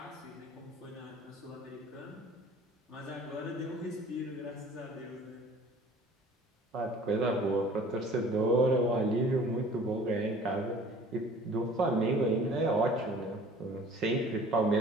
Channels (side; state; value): both; normal; correlation 0.49